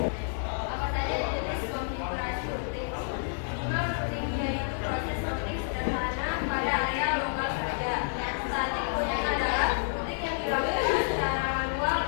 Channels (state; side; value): silent; right; digital silence